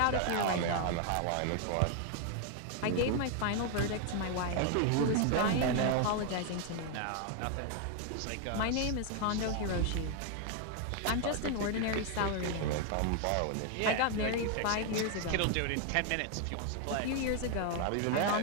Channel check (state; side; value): different; both; correlation 0.01